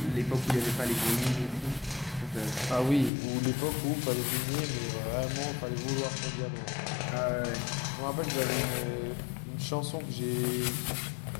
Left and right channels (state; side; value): drops out; right; at 3.1 s